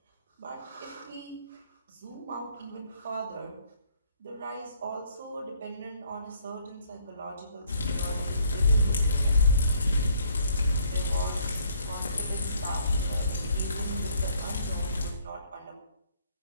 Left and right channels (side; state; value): both; inverted; correlation -0.64